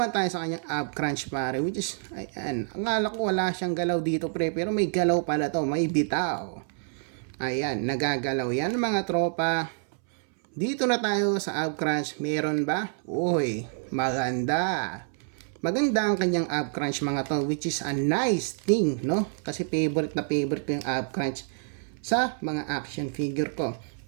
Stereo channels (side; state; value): left; silent; 60 dB below the other